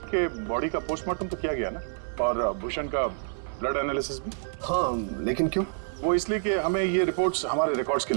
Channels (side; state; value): left; silent; 58 dB below the other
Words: के बॉडी का पोस्टमार्टम तो किया गया ना, और भूषण का ब्लड एनालिसिस भी? हाँ, लेकिन क्यों? वो इसलिए कि हमें ये रिपोर्ट्स हमारे रिकॉर्ड्स के